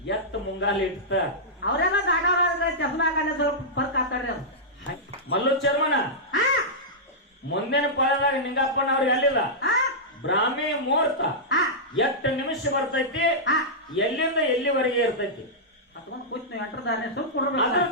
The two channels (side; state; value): both; normal; correlation -0.11